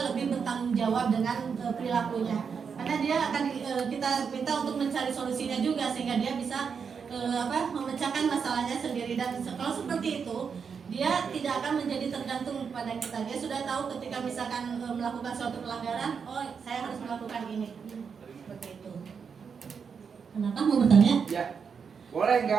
lebih bertanggung jawab dengan perilakunya, karena dia akan kita minta untuk mencari solusinya juga sehingga dia bisa memecahkan masalahnya sendiri. Dan kalau seperti itu dia tidak akan menjadi tergantung pada kita. Dia sudah tahu ketika misalkan melakukan suatu pelanggaran, oh saya harus melakukan ini, seperti itu. Kenapa mau bertanya? Ya. Boleh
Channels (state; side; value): quieter; left; 6.2 dB